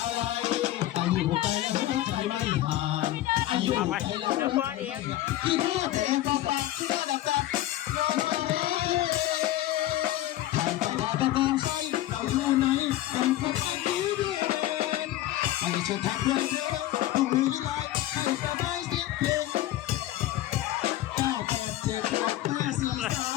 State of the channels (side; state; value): right; quieter; 14.6 dB